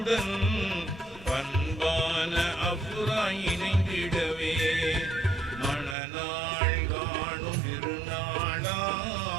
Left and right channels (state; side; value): drops out; left; at 6.0 s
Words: பண்பான அஃப்ரா இணைந்திடவே. மணநாள் காணும் திருநாளா